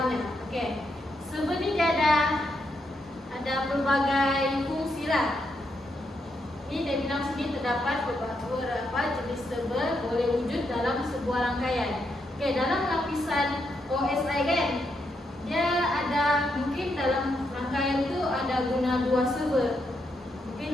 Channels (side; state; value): both; normal; correlation 0.80